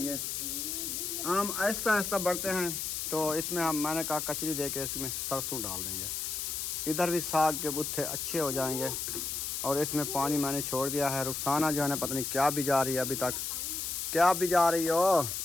आम आहिस्ता आहिस्ता बढ़ते हैं तो इसमें मैंने कहा कचरी दे के इसमें सरसों डाल देंगे। इधर भी साग के बुत्थे अच्छे हो जाएंगे। और इसमें पानी मैंने छोड़ दिया है। रुखसाना जो है ना पता नहीं क्या बिजा रही है अभी तक। क्या बिजा रही हो?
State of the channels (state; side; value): noise; left; hiss, 3 dB below the sound